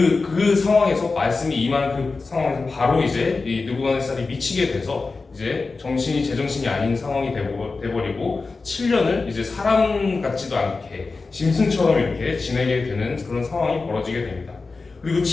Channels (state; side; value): quieter; right; 4.0 dB